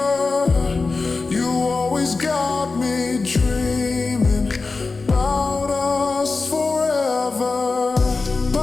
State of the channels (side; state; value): right; quieter; 4.0 dB